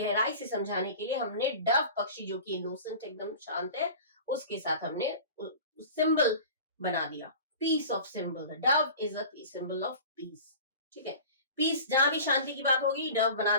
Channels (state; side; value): inverted; both; correlation -0.39